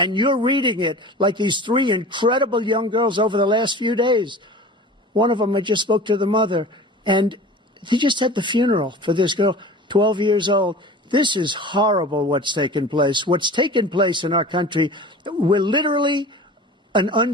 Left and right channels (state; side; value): normal; both; correlation 0.38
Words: you're reading it like these 3 incredible young girls over the last few days. One of them, I just spoke to the mother, and he just had the funeral for this girl, 12 years old. This is horrible what's taken place. What's taken place in our country, we're literally an